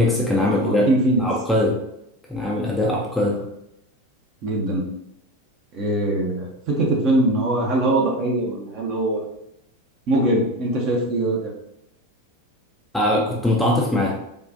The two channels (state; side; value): normal; both; correlation 0.30